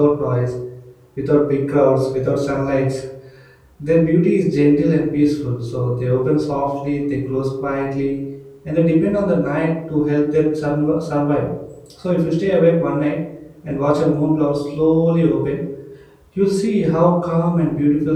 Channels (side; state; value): both; identical; correlation 1.00